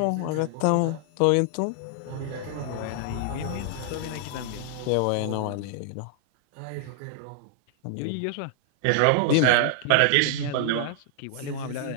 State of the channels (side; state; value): both; different; correlation 0.00